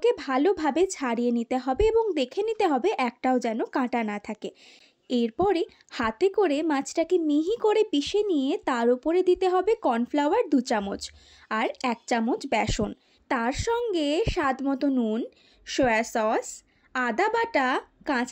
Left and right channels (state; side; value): identical; both; correlation 1.00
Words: ভালোভাবে ছাড়িয়ে নিতে হবে এবং দেখে নিতে হবে একটাও যেন কাঁটা না থাকে। এরপরে হাতে করে মাছটাকে মিহি করে পিষে নিয়ে তার উপরে দিতে হবে কর্নফ্লাওয়ার 2 চামচ আর 1 চামচ বেসন। তার সঙ্গে স্বাদ মতো নুন, সয়া সস, আদা বাটা,